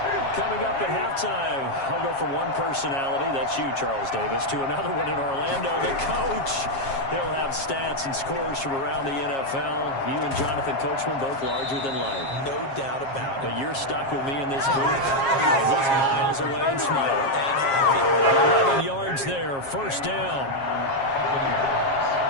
Coming up at halftime, I'll go from one personality, that's you, Charles Davis, to another one in Orlando, the coach. He'll have stats and scores from around the NFL. You and Jonathan Coachman both larger than life. No doubt about it. But you're stuck with me in this booth, and he's miles away and smiling. 11 yards there, first down.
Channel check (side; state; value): right; late; 7.4 ms